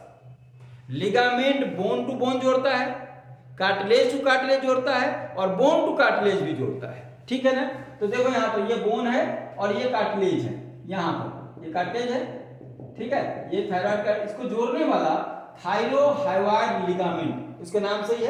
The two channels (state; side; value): identical; both; correlation 1.00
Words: लिगामेंट बोन टू बोन जोड़ता है, कार्टिलेज टू कार्टिलेज जोड़ता है और बोन टू कार्टिलेज भी जोड़ता है। ठीक है ना। तो देखो यहाँ पर ये बोन है और ये कार्टिलेज है, यहाँ पर ये कार्टिलेज है। ठीक है, ये थायरॉइड का, इसको जोड़ने वाला थायरोहाइवाइड लिगामेंट, उसके नाम से ही